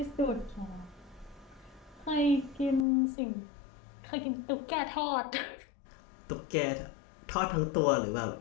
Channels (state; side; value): drops out; right; at 2.9 s